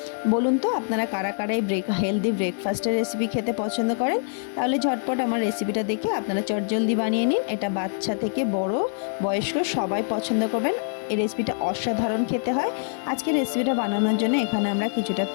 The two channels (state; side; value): silent; right; digital silence